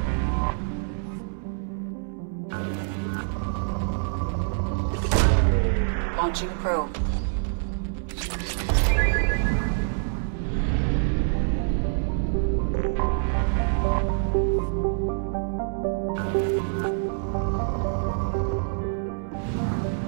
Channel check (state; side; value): silent; left; 61 dB below the other